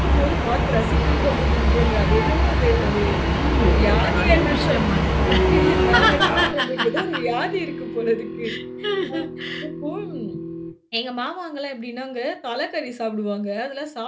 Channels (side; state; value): both; identical; correlation 1.00